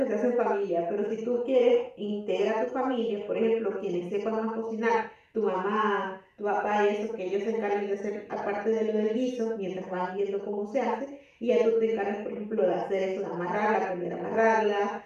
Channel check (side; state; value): both; identical; correlation 1.00